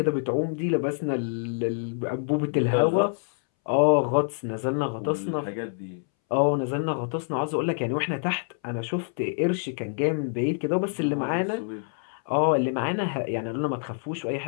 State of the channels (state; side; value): silent; right; 61 dB below the other